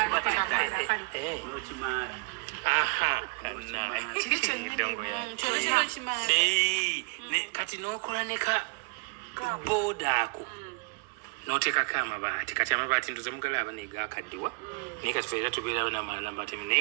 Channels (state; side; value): quieter; left; 32.3 dB